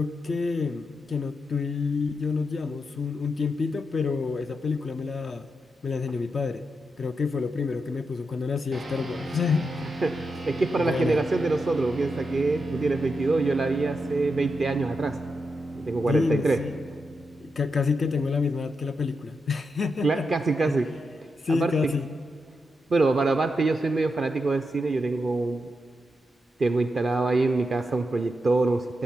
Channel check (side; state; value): both; normal; correlation 0.85